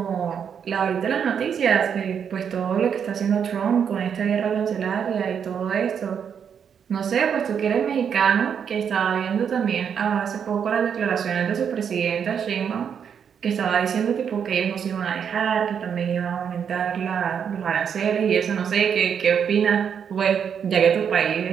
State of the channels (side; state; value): left; quieter; 7.6 dB